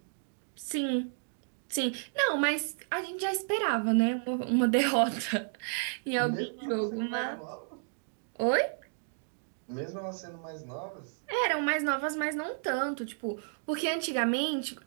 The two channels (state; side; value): silent; left; digital silence